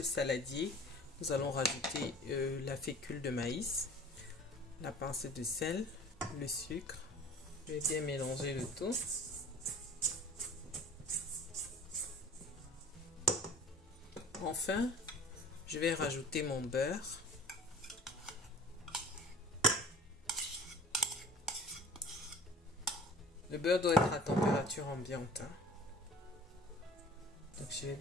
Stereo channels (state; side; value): normal; both; correlation 0.45